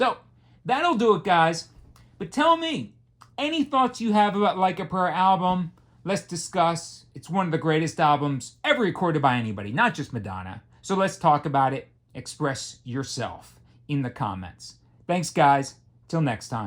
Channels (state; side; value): identical; both; correlation 1.00